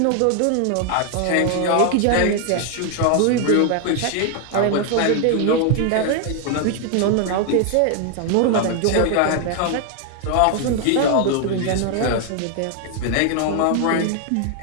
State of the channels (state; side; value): different; both; correlation 0.00